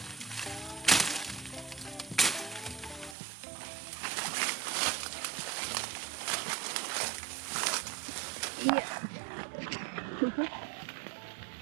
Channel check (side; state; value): left; drops out; at 3.2 s